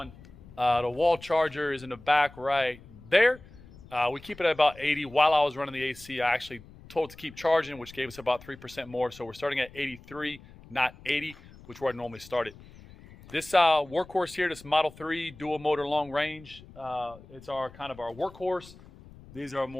The wall charger is in the back right there. We keep it at about 80. While I was running the AC, I actually told it to keep charging, which gave us about 3% more. So we're starting at 83, not 80, which is where I normally start it. This workhorse here, this Model 3 dual motor long range, it's our kind of our workhorse. These are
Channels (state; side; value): noise; left; rumble, 21 dB below the sound